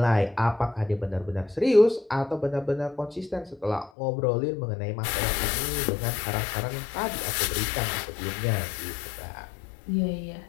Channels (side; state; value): right; drops out; at 3.9 s